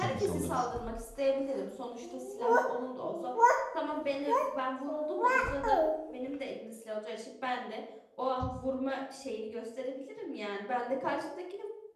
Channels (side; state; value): both; identical; correlation 1.00